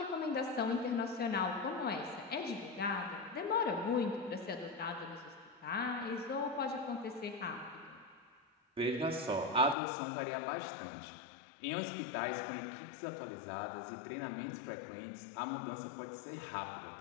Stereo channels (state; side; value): drops out; right; at 9.8 s